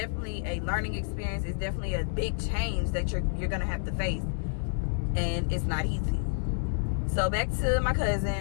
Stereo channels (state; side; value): silent; right; digital silence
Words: a learning experience. It's definitely a big change that you're gonna have to face, and it's not easy. So back to my